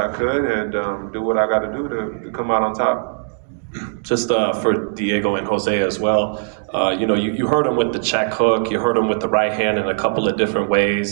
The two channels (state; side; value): silent; left; 66 dB below the other